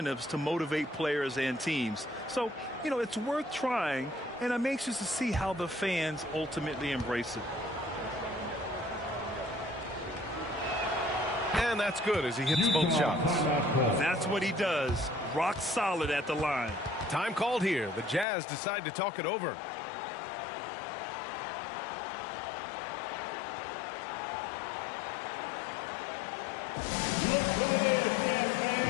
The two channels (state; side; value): drops out; right; at 18.2 s